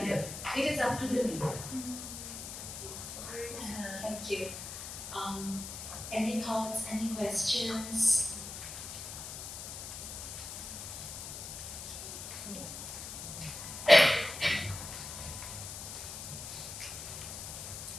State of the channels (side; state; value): left; noise; hiss, 8 dB below the sound